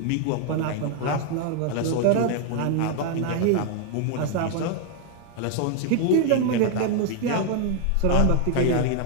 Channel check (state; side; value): different; both; correlation 0.00